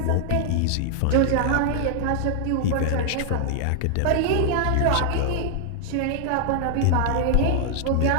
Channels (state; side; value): different; both; correlation 0.00